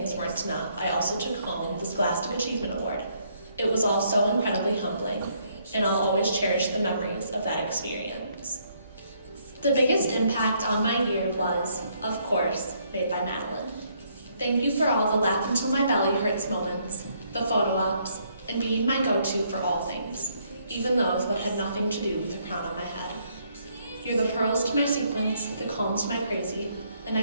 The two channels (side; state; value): both; inverted; correlation -0.70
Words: weren't enough, I also took home the Scholastic Achievement Award. It was all so incredibly humbling, and I'll always cherish the memories of that experience. The biggest impact on my year was, of course, made by Madeline. Thank you for all the laugh until my belly hurts moments, the photo ops, and being my go-to for all things, even those that had nothing to do with the crown on my head. You're the pearls to my sequins, the calm to my crazy, and